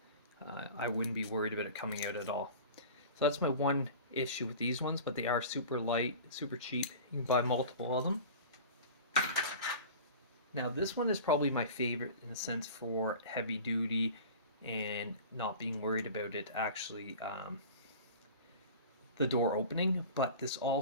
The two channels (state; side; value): inverted; both; correlation -0.37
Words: I wouldn't be worried about it coming out at all. So that's my one issue with these ones, but they are super light, super cheap. You can buy multiple of them. Now this one is probably my favorite in a sense for heavy duty and not being worried about it actually the door opening, but this